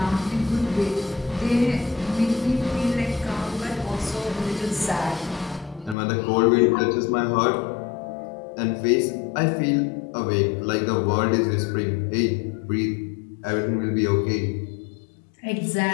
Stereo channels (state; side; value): drops out; right; at 6.0 s